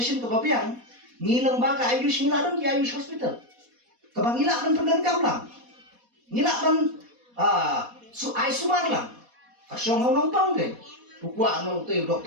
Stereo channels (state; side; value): late; left; 4.1 ms